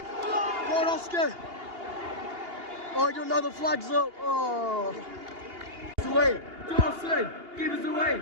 Go on, Oscar. Oh, I don't know, the flag's up. Oh. It's away. Dawson, give us away.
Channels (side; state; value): left; late; 2.8 ms